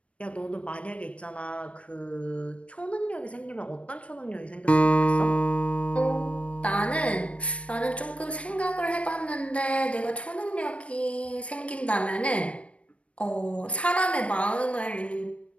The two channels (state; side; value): late; right; 0.062 ms